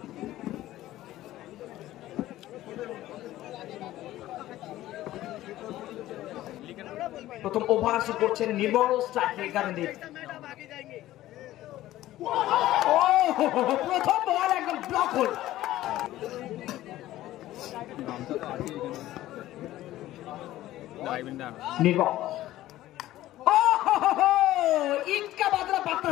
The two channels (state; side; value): quieter; right; 15.0 dB